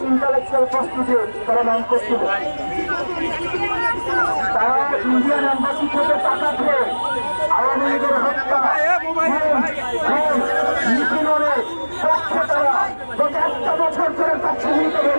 ইন্টালেকচুয়াল প্রস্তুতি তারা নাম করছিল। তারা ইন্ডিয়ান এম্বাসি থেকে টাকা খেয়ে আওয়ামী লীগের হত্যা নিপীড়নের পক্ষে তারা গত একটা বছর ধরে তার ছবিতে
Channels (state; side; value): inverted; both; correlation -1.00